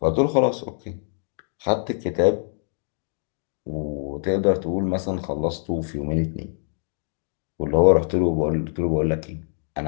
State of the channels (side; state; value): right; silent; digital silence